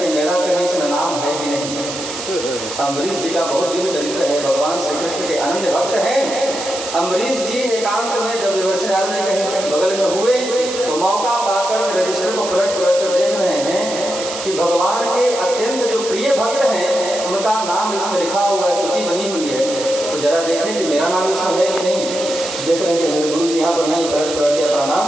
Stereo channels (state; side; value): noise; right; hiss, 8 dB below the sound